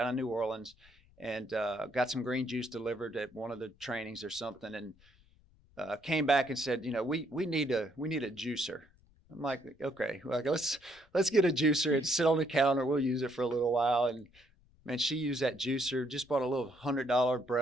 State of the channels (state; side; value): noise; left; rumble, 29 dB below the sound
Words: in New Orleans and got some green juice delivered at one of the trainings or something, and came back and said, we need a juicer. I'm like, okay, let's get a juicer and sit on the counter. We'll use it for a little while. And man, she used that juicer, just bought a little $100